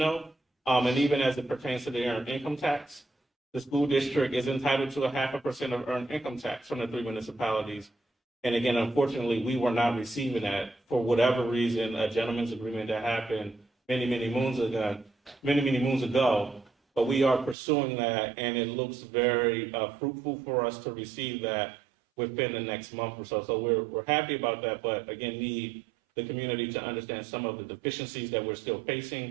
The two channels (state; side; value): drops out; left; at 17.6 s